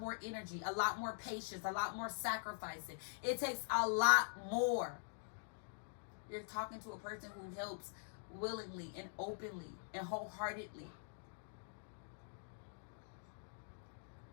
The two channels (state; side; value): silent; right; digital silence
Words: more energy, a lot more patience, a lot more sacrificing. It takes a lot more. You're talking to a person who helps willingly and openly and wholeheartedly.